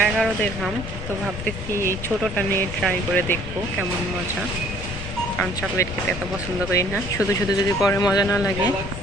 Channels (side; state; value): left; noise; rumble, 8 dB below the sound